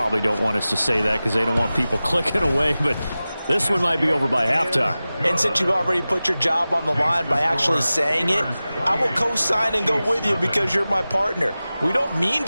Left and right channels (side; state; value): both; inverted; correlation -0.96